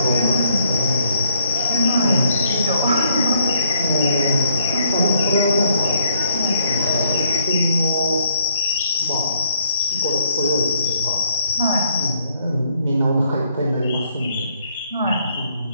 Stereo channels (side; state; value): both; inverted; correlation -0.69